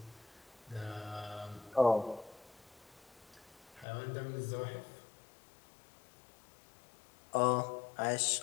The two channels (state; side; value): drops out; right; at 3.9 s